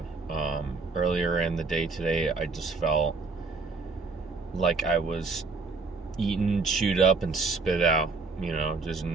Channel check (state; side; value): quieter; left; 4.1 dB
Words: Earlier in the day today, I just felt like I was eaten, chewed up, and spit out. Just